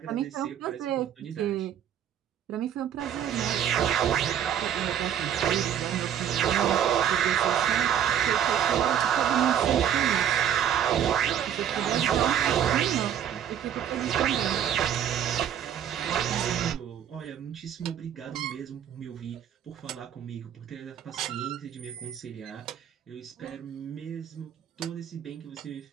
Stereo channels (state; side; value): quieter; left; 9.5 dB